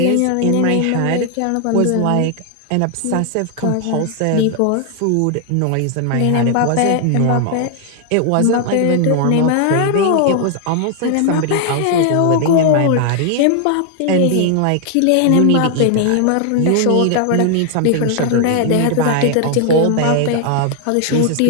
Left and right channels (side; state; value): both; different; correlation 0.00